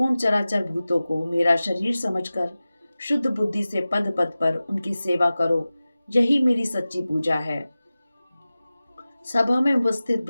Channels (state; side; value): inverted; both; correlation -0.96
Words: चराचर भूतों को मेरा शरीर समझकर शुद्ध बुद्धि से पद पद पर उनकी सेवा करो। यही मेरी सच्ची पूजा है। सभा में उपस्थित